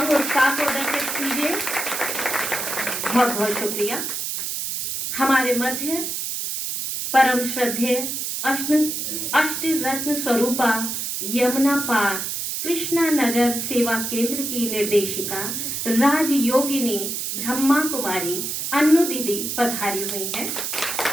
उत्साह को दर्शित कीजिए। बहुत बहुत शुक्रिया। हमारे मध्य परम श्रद्धेय अष्ट रत्न स्वरूपा यमुना पार कृष्णा नगर सेवा केंद्र की निर्देशिका राजयोगिनी ब्रह्मा कुमारी अन्नू दीदी पधारी हुई है।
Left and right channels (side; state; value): right; noise; hiss, 3 dB below the sound